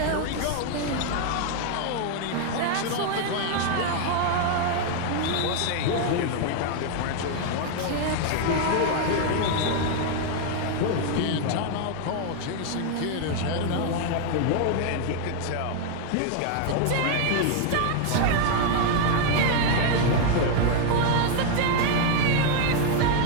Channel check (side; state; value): both; different; correlation 0.00